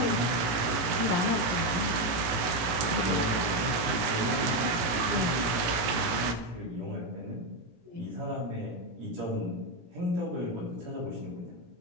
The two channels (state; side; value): late; left; 18 ms